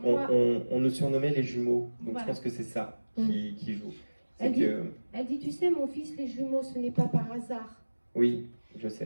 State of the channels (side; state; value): both; inverted; correlation -1.00